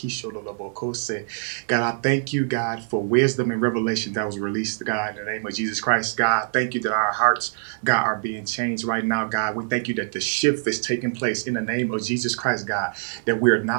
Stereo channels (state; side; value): silent; left; 63 dB below the other